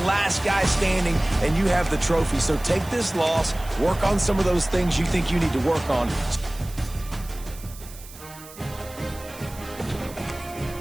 last guy standing, and you have the trophy. So take this loss, work on some of those things you think you need to work on.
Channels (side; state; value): right; noise; hiss, 18 dB below the sound